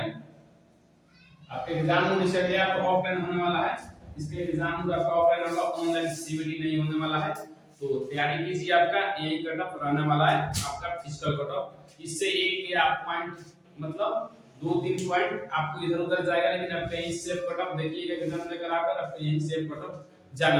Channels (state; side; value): identical; both; correlation 1.00